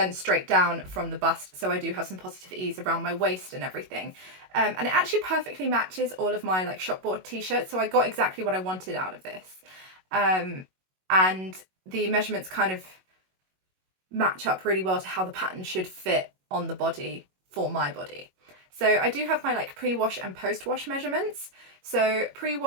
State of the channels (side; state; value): left; late; 21 ms